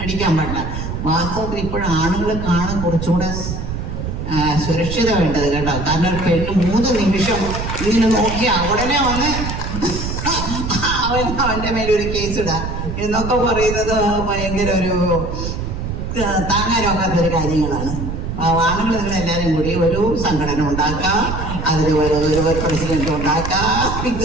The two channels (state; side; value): noise; right; rumble, 5 dB below the sound